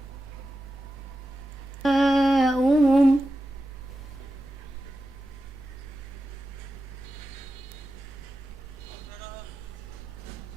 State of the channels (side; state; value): both; normal; correlation 0.92